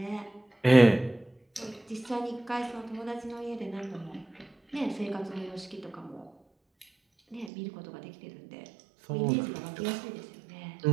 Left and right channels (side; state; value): left; drops out; at 7.5 s